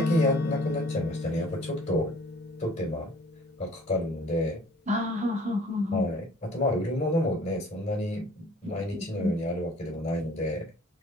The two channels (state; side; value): normal; both; correlation 0.52